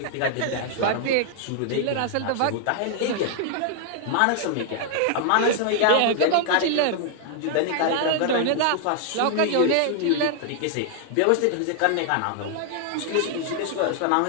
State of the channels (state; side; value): different; both; correlation 0.00